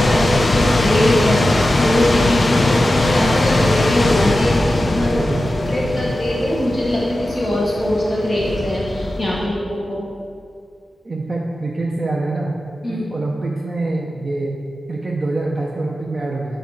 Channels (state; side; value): normal; both; correlation 0.93